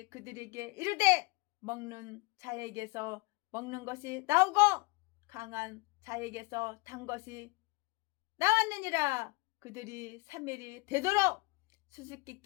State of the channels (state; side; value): quieter; right; 25.4 dB